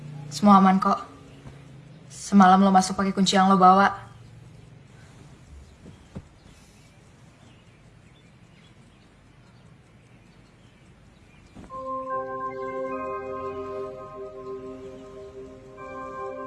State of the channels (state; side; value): identical; both; correlation 1.00